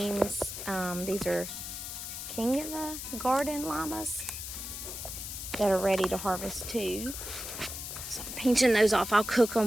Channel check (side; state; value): left; noise; hiss, 7 dB below the sound